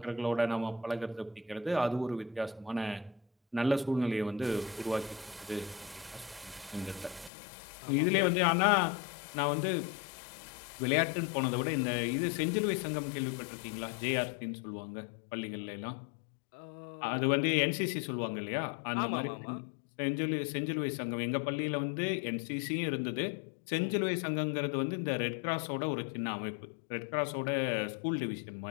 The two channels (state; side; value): drops out; right; at 7.3 s